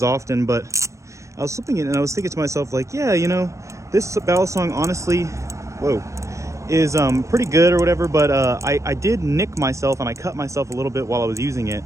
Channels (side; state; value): left; late; 0.15 ms